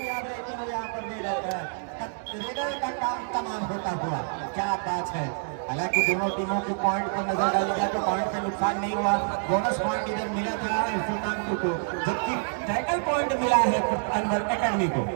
रहती है यहाँ पर नहीं रहता है। रेडर का काम तमाम होता हुआ क्या बात है। हालांकि दोनों टीमों के पॉइंट पर नजर डाली जाए तो पॉइंट पे नुकसान नहीं हुआ। बोनस पॉइंट इधर मिला था सुल्तानपुर को, जबकि टैकल पॉइंट मिला है अनवर एकेडमी को।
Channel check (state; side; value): silent; left; digital silence